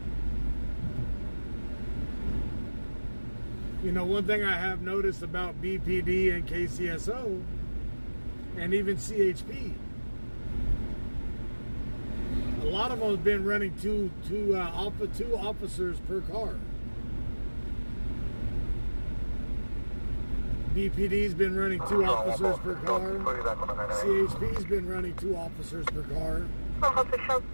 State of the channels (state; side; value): inverted; both; correlation -1.00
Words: You know, one thing I have noticed about BPD and KCSO and even CHP, a lot of them have been running two officers per car. BPD's been running 2 officers per car. CHP's been running 2 officers per car.